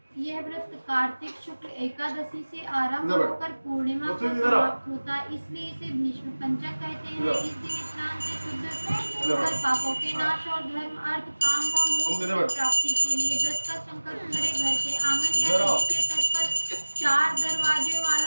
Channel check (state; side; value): inverted; both; correlation -1.00